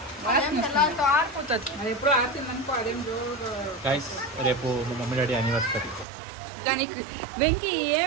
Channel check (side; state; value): left; drops out; at 6.1 s